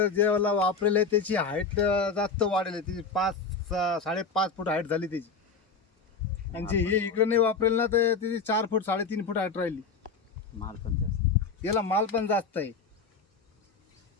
जे वापरेले त्याची हाईट जास्त वाढेल. त्याची 5-5.5 फूट हाईट झाली त्याची. आणि जे हे इकडे नाही वापरेल ना तर त्याची 4 फूट 3.5 फूट हाईट राहिली. माल पण जास्त, याला माल पण जास्त आहे.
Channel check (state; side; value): quieter; right; 4.8 dB